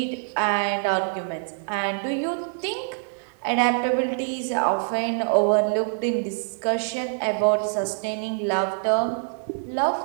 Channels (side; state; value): left; silent; digital silence